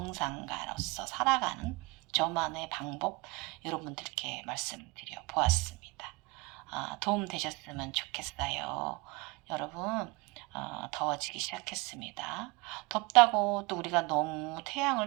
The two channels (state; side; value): quieter; left; 25.0 dB